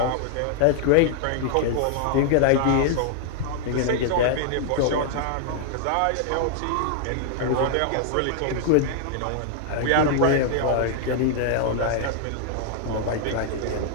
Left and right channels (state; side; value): different; both; correlation 0.00